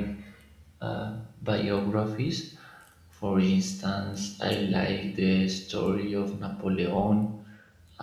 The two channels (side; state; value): both; identical; correlation 1.00